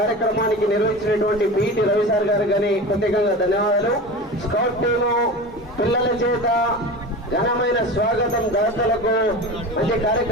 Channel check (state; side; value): normal; both; correlation 0.30